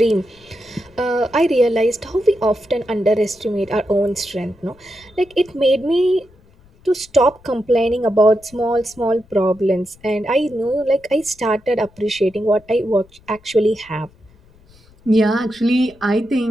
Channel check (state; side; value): noise; left; rumble, 28 dB below the sound